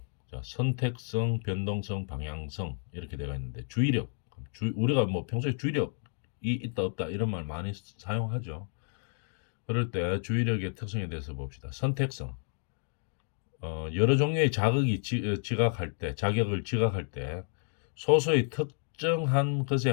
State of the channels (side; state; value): right; silent; digital silence